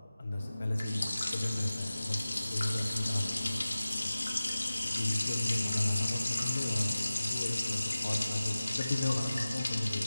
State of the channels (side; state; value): both; inverted; correlation -0.97